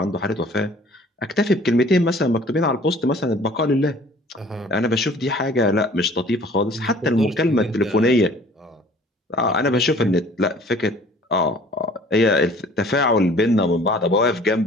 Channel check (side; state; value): both; normal; correlation 0.51